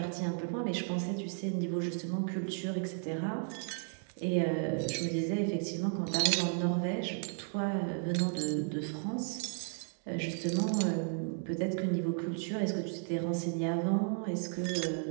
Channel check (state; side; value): silent; left; 55 dB below the other